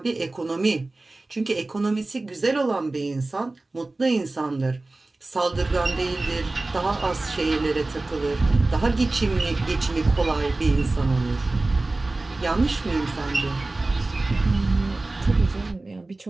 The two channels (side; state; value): left; quieter; 3.1 dB